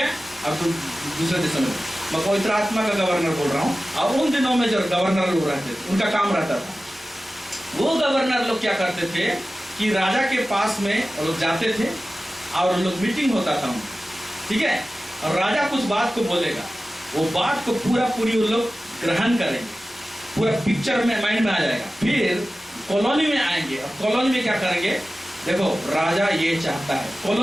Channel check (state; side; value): normal; both; correlation 0.95